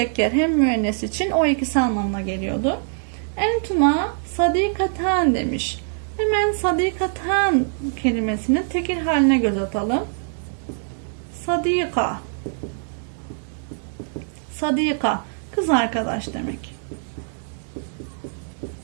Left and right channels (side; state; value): left; silent; 63 dB below the other